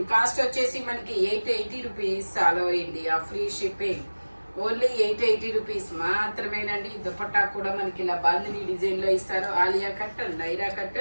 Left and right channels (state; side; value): inverted; both; correlation -1.00